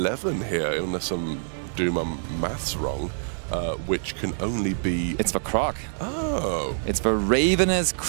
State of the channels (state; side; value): silent; left; digital silence